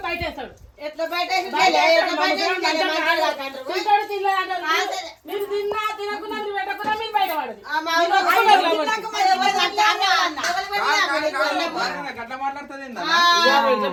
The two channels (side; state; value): both; identical; correlation 1.00